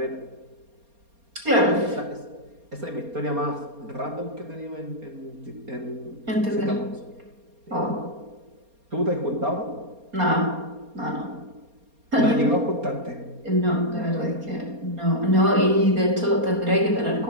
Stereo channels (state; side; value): late; left; 4.3 ms